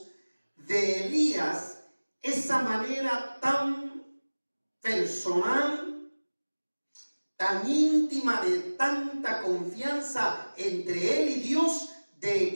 de Elías esa manera tan personal, tan íntima, de tanta confianza entre él y Dios, de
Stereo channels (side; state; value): both; inverted; correlation -1.00